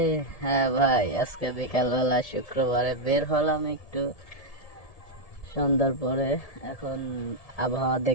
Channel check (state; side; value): late; right; 1.7 ms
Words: হ্যাঁ ভাই, আজকে বিকালবেলা শুক্রবারে বের হলাম একটু সন্ধ্যার পরে। এখন আবহাওয়া